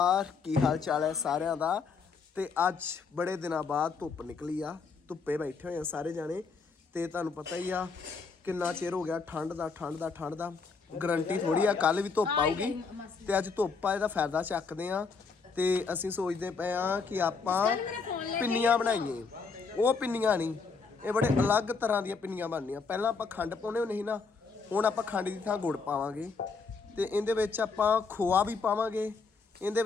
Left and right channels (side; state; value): right; quieter; 4.9 dB